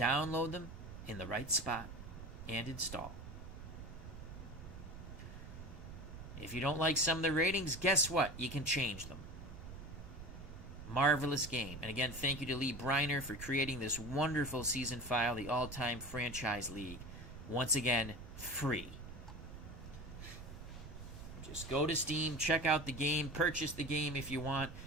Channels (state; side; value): noise; right; rumble, 12 dB below the sound